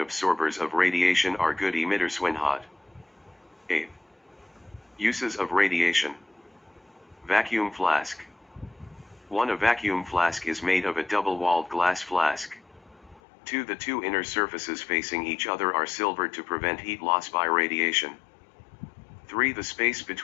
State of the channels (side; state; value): right; drops out; at 13.2 s